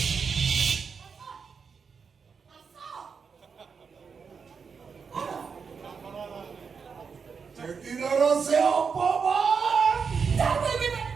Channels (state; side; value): quieter; left; 5.8 dB